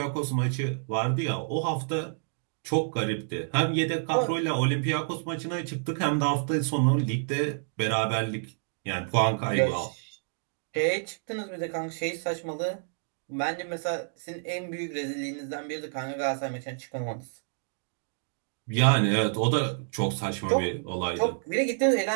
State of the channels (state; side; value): silent; left; digital silence